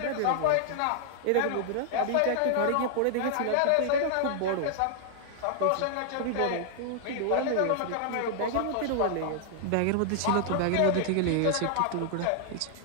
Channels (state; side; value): different; both; correlation -0.01